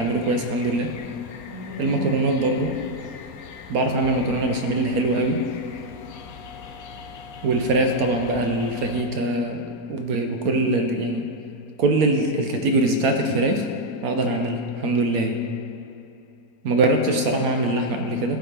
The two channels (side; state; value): left; late; 4.3 ms